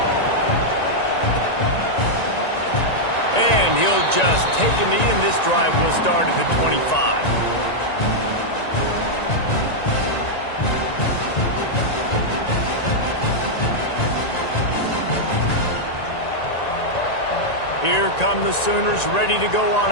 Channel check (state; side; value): late; right; 1.9 ms